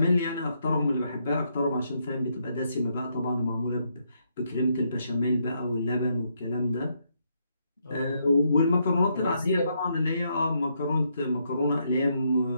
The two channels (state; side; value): inverted; both; correlation -0.76